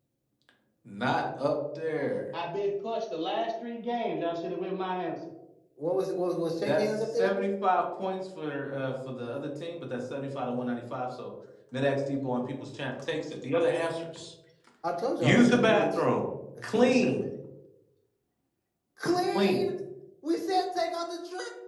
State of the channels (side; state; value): both; identical; correlation 1.00